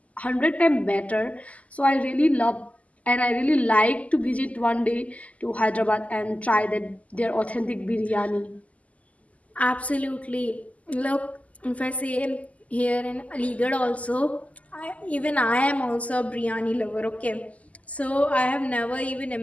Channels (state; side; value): late; right; 0.071 ms